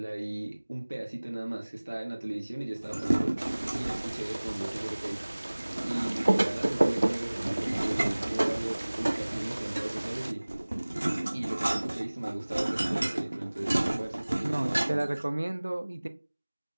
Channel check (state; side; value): inverted; both; correlation -1.00